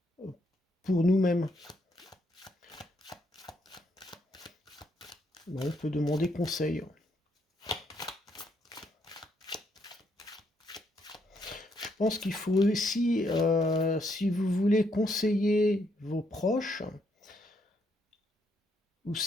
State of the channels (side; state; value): both; normal; correlation 0.74